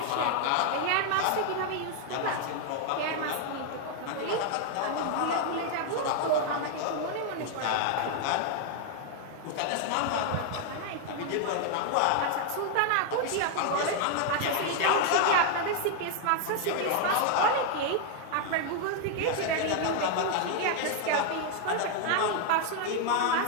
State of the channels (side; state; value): both; different; correlation 0.00